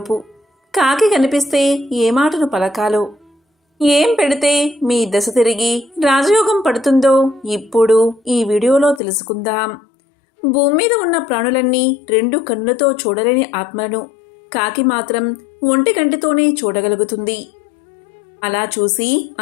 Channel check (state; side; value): drops out; right; at 9.0 s